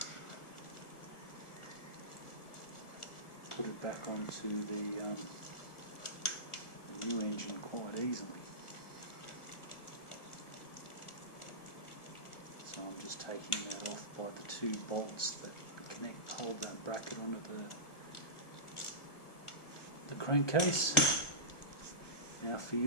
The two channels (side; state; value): right; late; 1.4 ms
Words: put it back onto the new engine quite easily. So I'm just taking that off by the two bolts that hold that bracket onto the crankcase. Now for